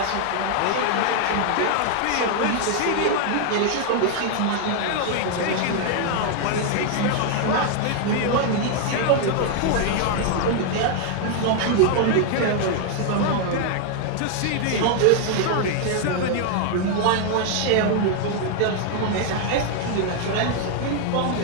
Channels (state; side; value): different; both; correlation 0.00